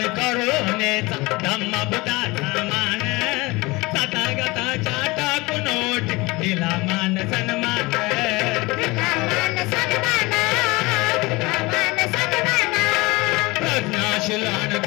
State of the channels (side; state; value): right; quieter; 23.1 dB